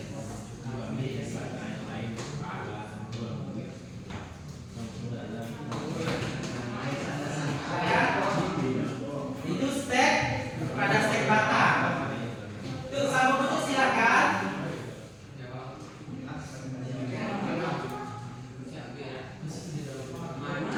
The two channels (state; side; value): identical; both; correlation 1.00